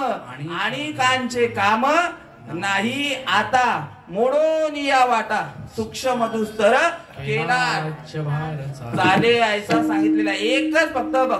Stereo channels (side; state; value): both; identical; correlation 1.00